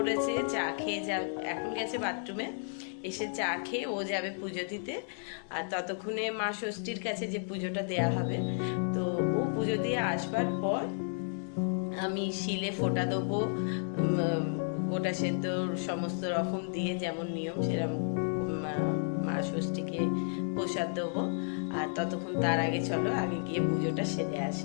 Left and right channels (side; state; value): right; silent; digital silence